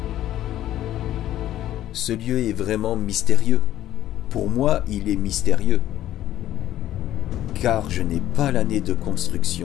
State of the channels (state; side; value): quieter; right; 12.9 dB